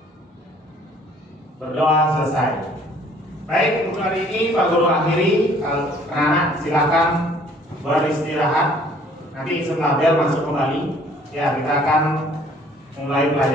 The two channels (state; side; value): normal; both; correlation 0.58